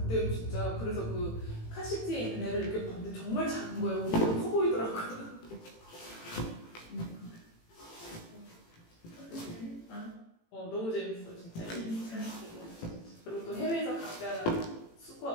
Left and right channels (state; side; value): late; right; 18 ms